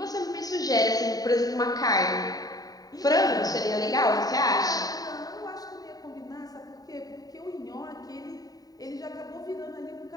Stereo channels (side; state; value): right; late; 0.18 ms